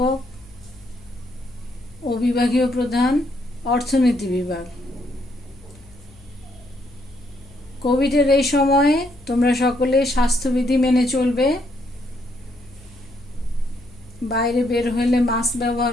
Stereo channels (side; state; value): left; noise; hum, 24 dB below the sound